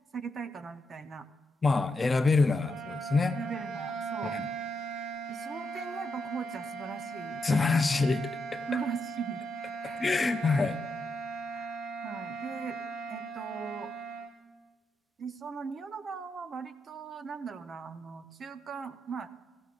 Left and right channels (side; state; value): both; normal; correlation 0.82